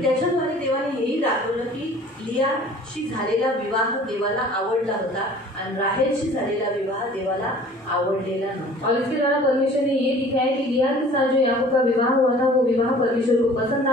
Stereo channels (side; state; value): both; normal; correlation 0.48